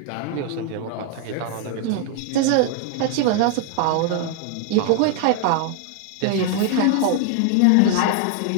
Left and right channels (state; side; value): different; both; correlation 0.00